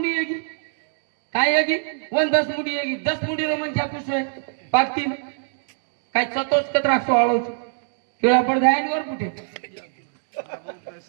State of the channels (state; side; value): silent; left; digital silence